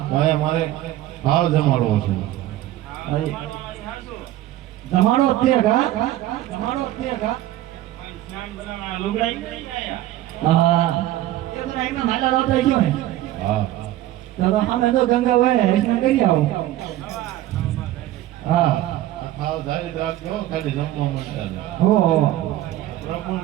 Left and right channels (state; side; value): quieter; left; 14.5 dB